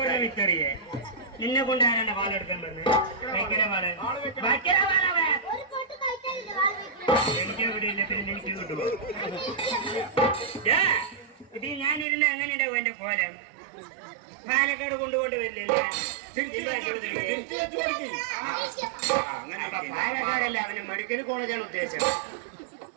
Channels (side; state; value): left; drops out; at 12.1 s